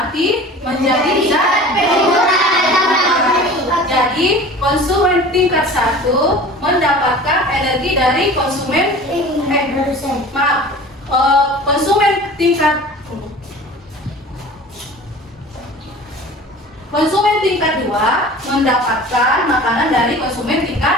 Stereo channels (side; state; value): both; normal; correlation 0.40